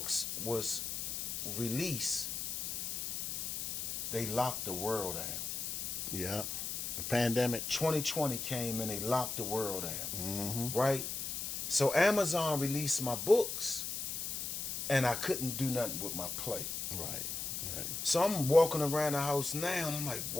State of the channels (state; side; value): noise; left; hiss, 3 dB below the sound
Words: was released, they locked the world down. Yeah. The pandemic. 2020 came and they locked the world down. Mm-hmm. Right? So Amazon released my books, and I couldn't do nothing with my play. Right. So I'm walking around the house now, and I'm like,